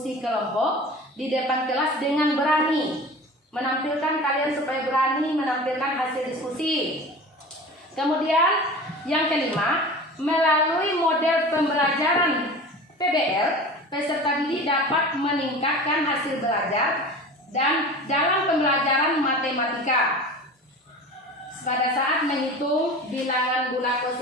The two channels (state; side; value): normal; both; correlation 0.36